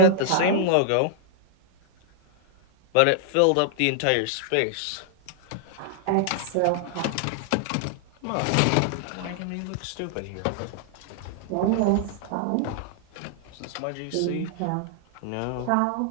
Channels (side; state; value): both; different; correlation -0.01